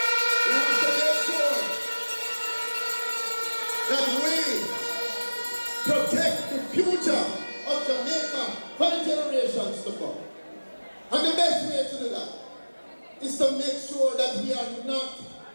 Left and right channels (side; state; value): both; inverted; correlation -1.00